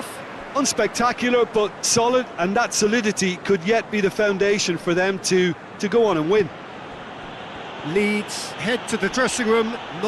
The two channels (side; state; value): both; identical; correlation 1.00